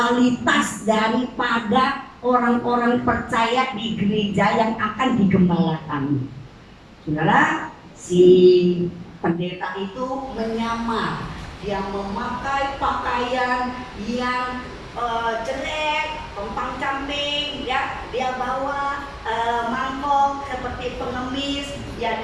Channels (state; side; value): identical; both; correlation 1.00